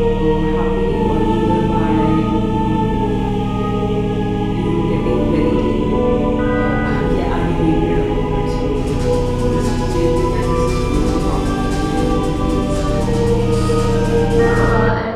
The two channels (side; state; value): both; identical; correlation 1.00